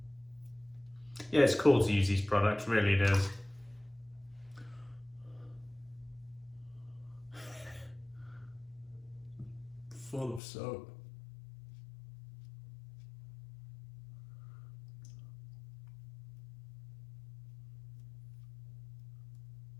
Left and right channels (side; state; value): right; drops out; at 10.4 s